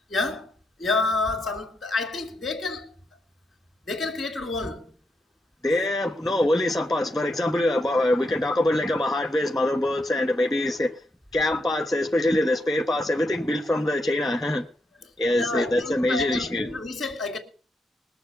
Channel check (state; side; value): normal; both; correlation 0.82